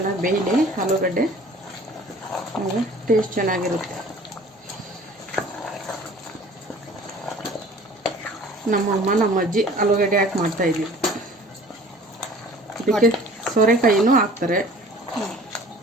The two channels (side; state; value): both; normal; correlation 0.49